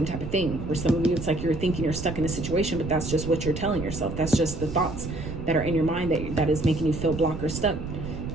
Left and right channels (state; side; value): noise; right; rumble, 8 dB below the sound